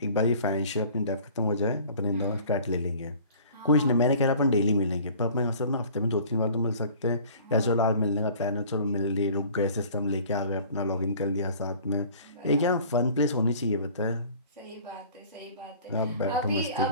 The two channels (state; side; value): inverted; both; correlation -0.48